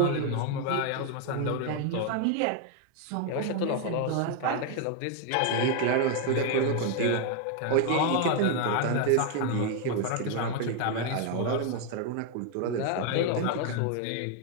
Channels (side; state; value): both; different; correlation 0.01